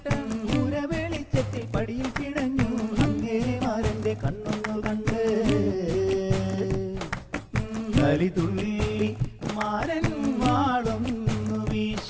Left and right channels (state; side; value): identical; both; correlation 1.00